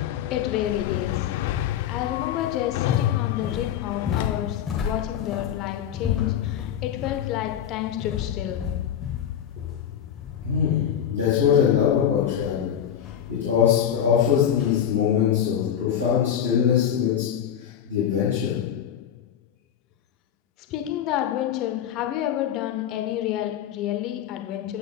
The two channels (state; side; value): quieter; right; 9.5 dB